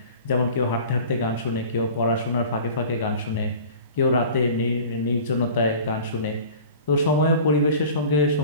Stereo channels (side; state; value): both; inverted; correlation -0.41